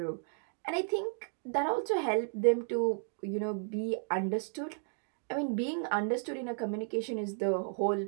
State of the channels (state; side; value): silent; left; 55 dB below the other